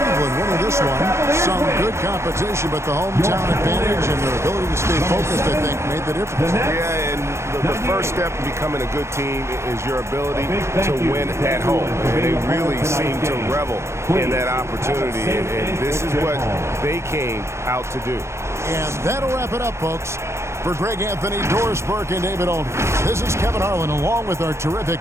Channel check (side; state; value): left; late; 0.13 ms